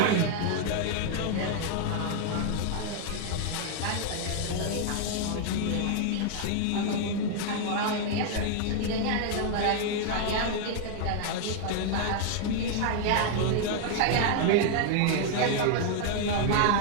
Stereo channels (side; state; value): both; different; correlation 0.00